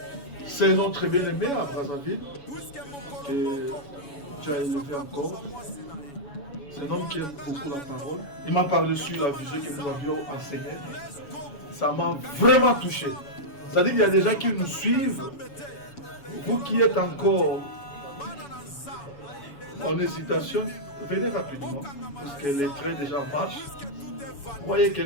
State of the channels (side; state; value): right; late; 7.1 ms